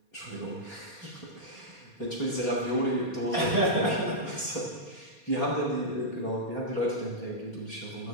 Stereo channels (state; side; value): late; right; 4.2 ms